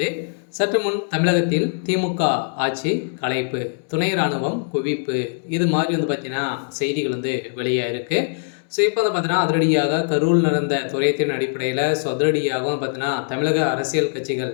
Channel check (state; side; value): silent; right; digital silence